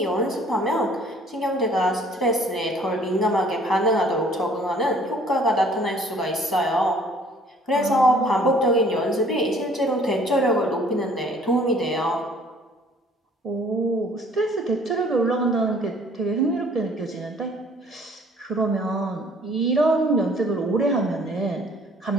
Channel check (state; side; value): normal; both; correlation 0.56